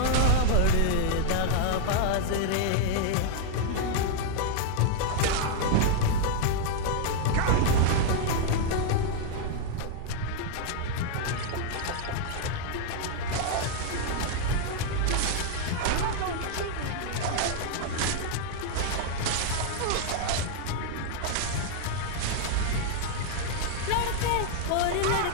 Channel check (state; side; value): different; both; correlation -0.01